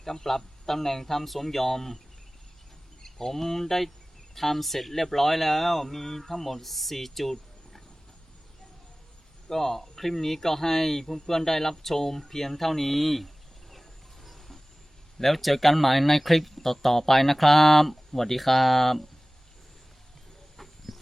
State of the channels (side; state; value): both; normal; correlation 0.98